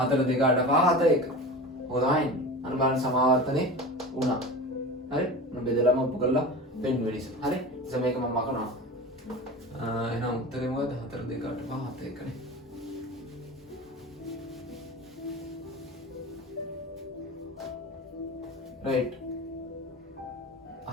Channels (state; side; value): normal; both; correlation 0.31